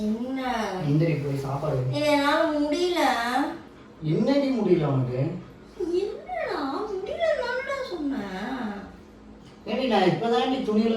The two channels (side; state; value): both; identical; correlation 1.00